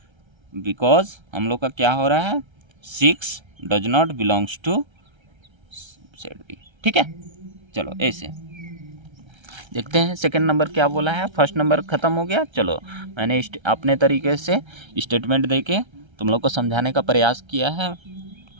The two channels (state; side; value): late; left; 1.3 ms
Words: हम लोग का क्या हो रहा है, 6 does not belongs to set B. ठीक है, चलो ऐसे देखते हैं सेकंड नंबर क्या बोला है। फर्स्ट नंबर ख़त्म हो गया। चलो मैंने अपने तरीके से स्टेटमेंट देके तुम लोग को समझाने का प्रयास किया है।